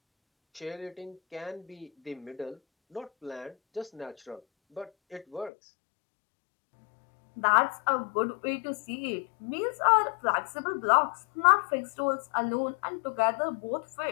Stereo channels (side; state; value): right; drops out; at 5.5 s